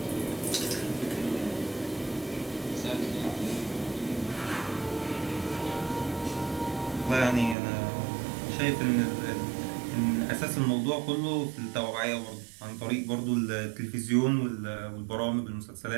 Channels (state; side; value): drops out; left; at 7.6 s